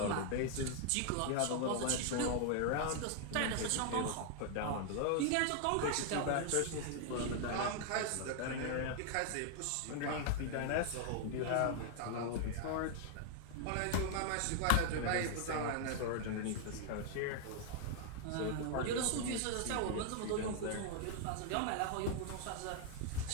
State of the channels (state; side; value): different; both; correlation 0.00